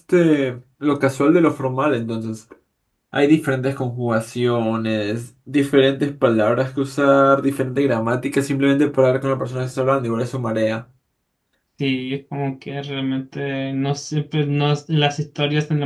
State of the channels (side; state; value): both; identical; correlation 1.00